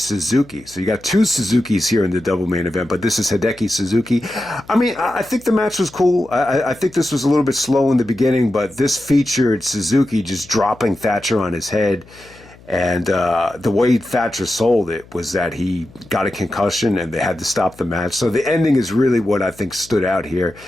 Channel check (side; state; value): left; noise; hum, 24 dB below the sound